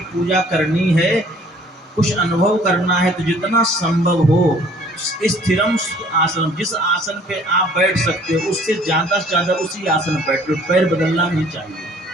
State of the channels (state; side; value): normal; both; correlation 0.56